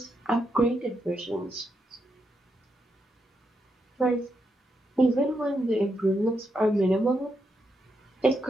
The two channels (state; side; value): normal; both; correlation 0.82